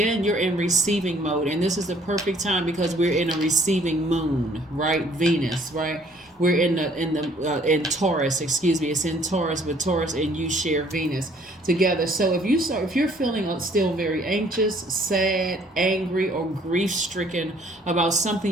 you're in receiving mode, and this is the perfect time because we're in a receiving moon, right? Venus, right? We're in Taurus, excuse me. It's in Taurus, but Taurus and you share Venus together. So if you're feeling still very anxious, sad, angry, or grief-stricken about something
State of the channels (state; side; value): normal; both; correlation 0.60